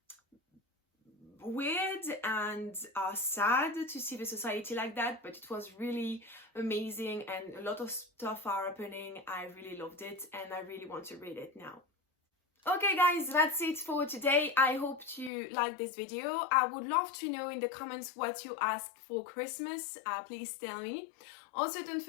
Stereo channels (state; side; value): drops out; right; at 15.3 s